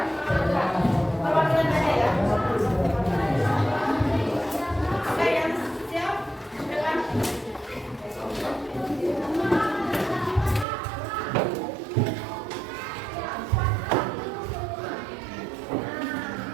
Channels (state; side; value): drops out; left; at 10.7 s